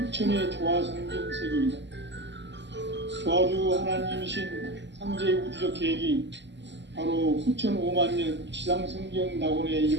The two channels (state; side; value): late; left; 0.52 ms